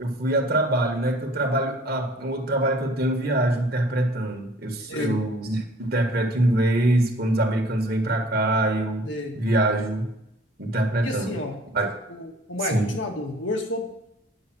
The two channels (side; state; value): both; normal; correlation 0.52